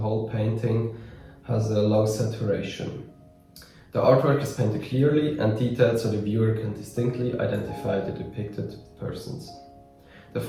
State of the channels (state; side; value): identical; both; correlation 1.00